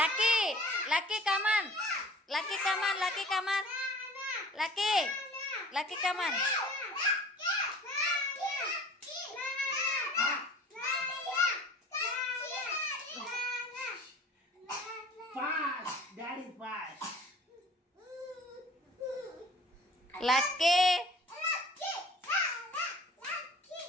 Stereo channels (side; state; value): both; normal; correlation 0.47